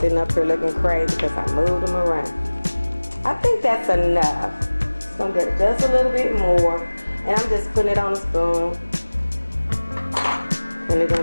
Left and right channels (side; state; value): both; inverted; correlation -1.00